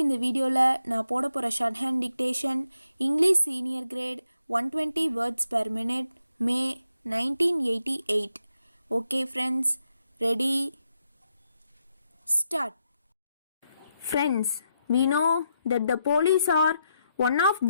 இந்த வீடியோவில் நான் போட போகிற short hand dictation English senior great 120 words per minute May 1988. Okay friends, ready, start. Friends, we know that the police are one of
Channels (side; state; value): both; inverted; correlation -0.82